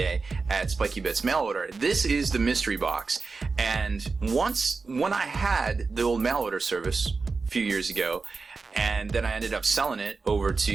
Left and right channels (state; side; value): quieter; left; 4.3 dB